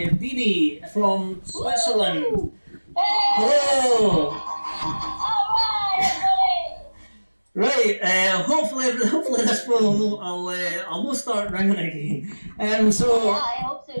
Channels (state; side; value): inverted; both; correlation -1.00